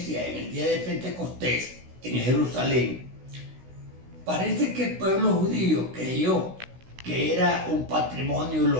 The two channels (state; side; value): late; left; 16 ms